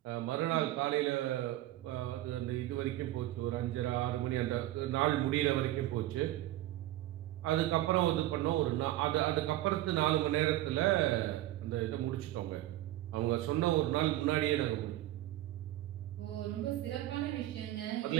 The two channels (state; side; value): quieter; left; 15.2 dB